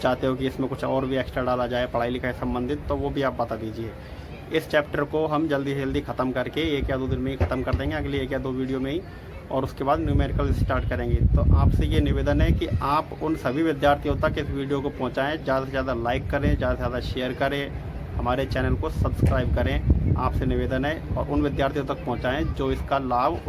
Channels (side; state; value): both; identical; correlation 1.00